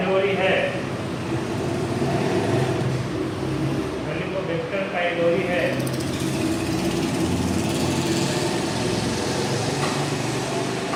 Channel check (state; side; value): identical; both; correlation 1.00